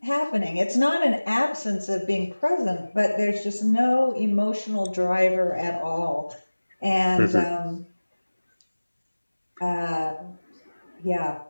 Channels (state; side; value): inverted; both; correlation -1.00